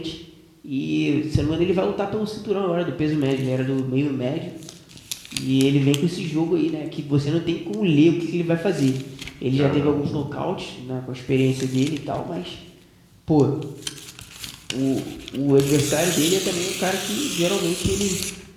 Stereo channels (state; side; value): identical; both; correlation 1.00